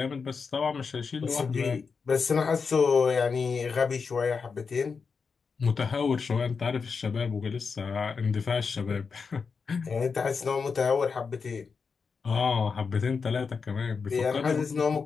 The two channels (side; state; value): right; quieter; 5.3 dB